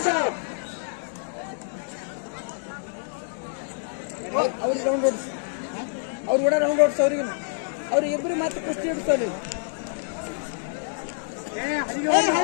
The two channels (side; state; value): right; silent; digital silence